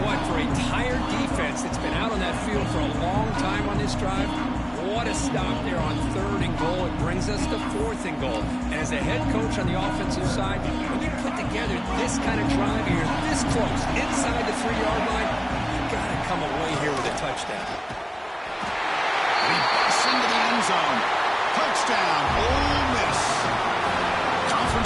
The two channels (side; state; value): both; identical; correlation 1.00